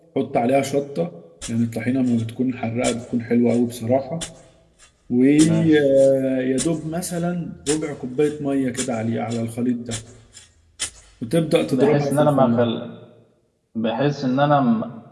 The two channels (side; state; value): both; identical; correlation 1.00